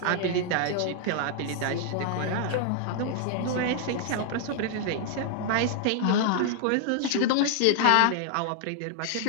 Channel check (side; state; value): both; different; correlation 0.00